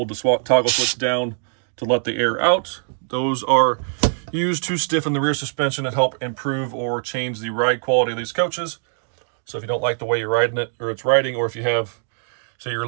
the toggle switch down to let the air out. Those are used to stiffen the rear suspension and help improve or change the ride quality of these coaches. So if you don't like the way you're riding it, or it's riding, or if you have, say you're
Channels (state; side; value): silent; left; 64 dB below the other